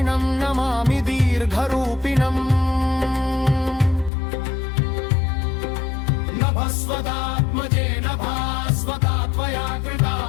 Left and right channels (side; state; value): right; drops out; at 4.1 s